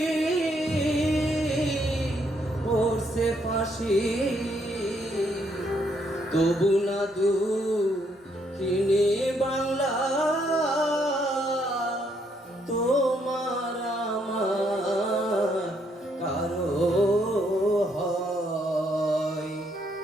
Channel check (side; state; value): both; normal; correlation 0.72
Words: পড়ছে ফাঁসি তবু না দুঃখিনী বাংলা তোমার আমার কারো হয়